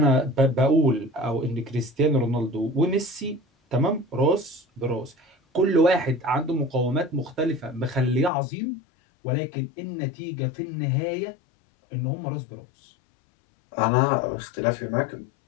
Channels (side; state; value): right; drops out; at 8.3 s